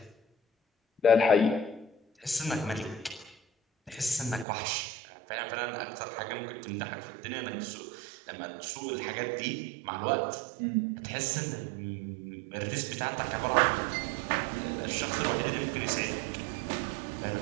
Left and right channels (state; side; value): drops out; left; at 4.5 s